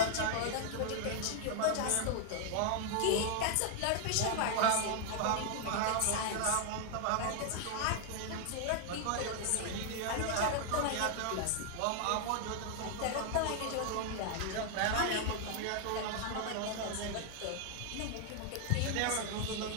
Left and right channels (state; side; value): different; both; correlation 0.00